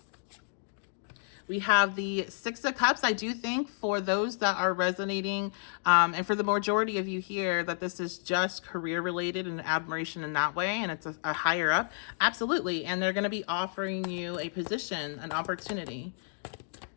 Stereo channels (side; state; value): right; silent; digital silence